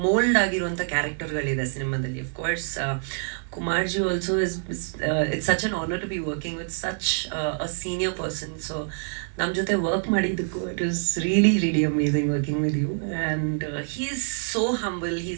ಮೋಲ್ಡ್ ಆಗಿರುವಂಥ ಕ್ಯಾರೆಕ್ಟರ್ಗಳಿದೆ ಸಿನಿಮಾದಲ್ಲಿ. Of course ಕುಮಾರ್ಜಿ also it's such an honour to be working with such a senior person. So ನಮ್ಮ ಜೊತೆ ವರ್ಕ್ ಮಾಡಿದ್ದಕ್ಕೂ it was really amazing working with you. And he is so humble, he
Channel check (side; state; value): left; silent; digital silence